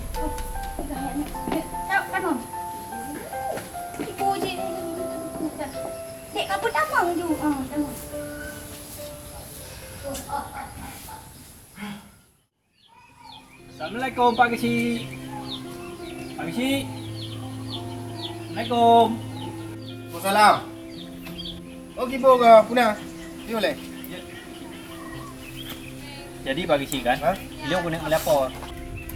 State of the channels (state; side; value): identical; both; correlation 1.00